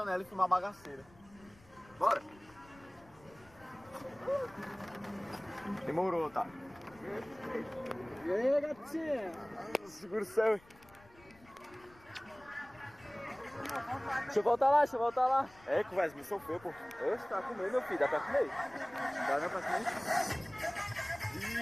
e filmar bagaceira. Bora. Demorou, tá? E aí, gatinha? Segura o céu. Deixa eu voltar lá. É, conversa, me sofreu, pô. Oxe, tá comendo, meu filho. Dá pra comer? Dá não pra comer?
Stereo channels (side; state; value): left; noise; rumble, 26 dB below the sound